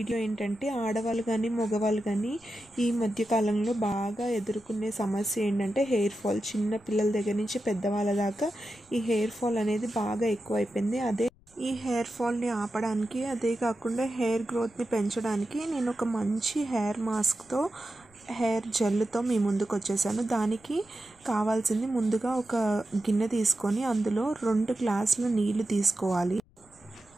ఏంటంటే ఆడవాళ్ళు కానీ మగవాళ్ళు కానీ ఈ మధ్యకాలంలో బాగా ఎదుర్కొనే సమస్య ఏంటంటే హెయిర్ ఫాల్. చిన్న పిల్లల దగ్గర నుంచి పెద్దవాళ్ళ దాకా ఈ హెయిర్ ఫాల్ అనేది బాగా ఎక్కువైపోయింది. ఈ హెయిర్ ఫాల్ని ఆపడానికి, అదే కాకుండా హెయిర్ గ్రోత్ని పెంచడానికి నేను ఒక మంచి హెయిర్ మాస్క్తో, హెయిర్ జెల్తో మీ ముందుకు వచ్చేసాను. దానికి కావాల్సింది ముందుగా ఒక గిన్నె తీసుకొని అందులో 2 గ్లాసుల నీళ్లు తీసుకోవాలి.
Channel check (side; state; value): left; noise; rumble, 29 dB below the sound